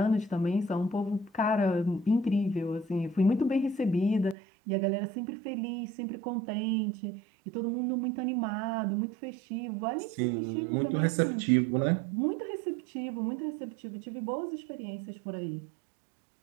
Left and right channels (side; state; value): left; drops out; at 4.4 s